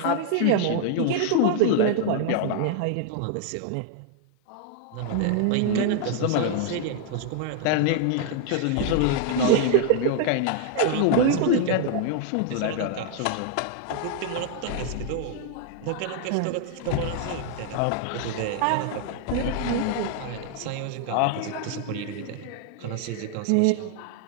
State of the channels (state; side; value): different; both; correlation 0.00